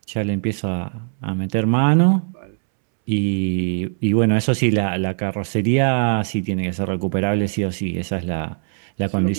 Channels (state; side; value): silent; left; 65 dB below the other